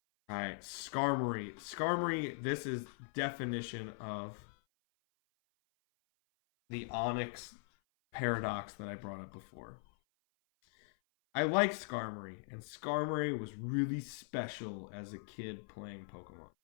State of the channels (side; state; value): right; silent; 51 dB below the other